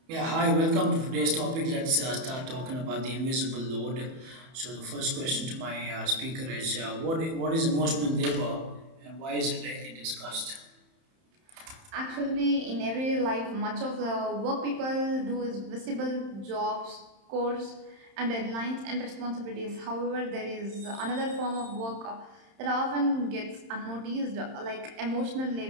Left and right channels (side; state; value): left; late; 31 ms